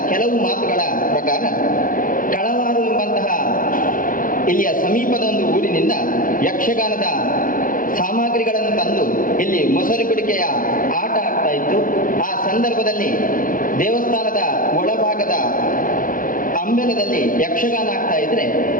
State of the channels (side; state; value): right; late; 0.40 ms